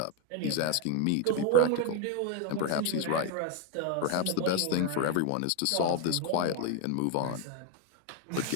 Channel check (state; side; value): different; both; correlation 0.01